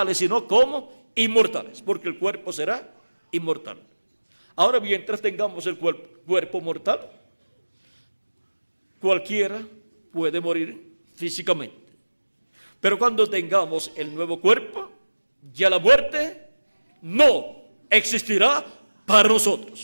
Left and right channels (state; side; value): inverted; both; correlation -1.00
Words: sino como inmortales, porque el cuerpo será inmortal. Ahora, mientras tengamos el cuerpo mortal, cualquiera puede morir físicamente. Pero cuando tengamos el nuevo cuerpo, ya la muerte no existirá para